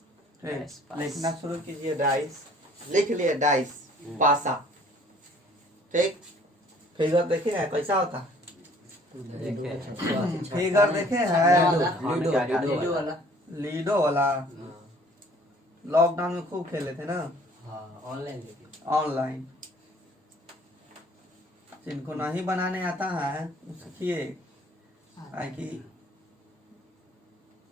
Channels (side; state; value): both; normal; correlation 0.55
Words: लिखना शुरू कीजिए। डाइस लिख लिए। डाइस पासा। ठीक। फिगर देखे है कैसा होता है? फिगर देखे है? लीडो वाला लॉकडाउन में खूब खेले थे ना। ऑनलाइन जिनको नहीं बनाने आता है सीखिए। कि